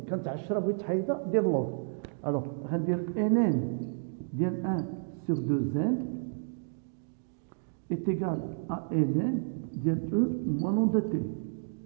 كانت 10 بغيت تحيدها دير لوغ. الوغ غندير ان ان ديال 1 sur 2n est égal à n ديال e moins lambda t.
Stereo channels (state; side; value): silent; left; digital silence